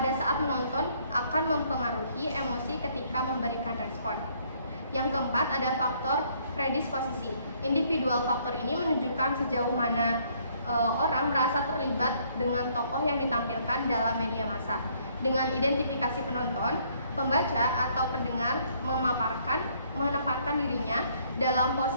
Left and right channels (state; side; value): inverted; both; correlation -0.65